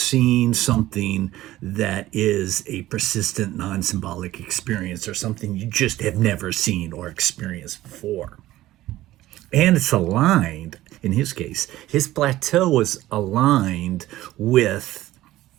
something that is a persistent non symbolic experience or something you just have never seen or experienced before. And it's aligned, in his case, his plateau was aligned with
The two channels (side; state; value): left; quieter; 15.6 dB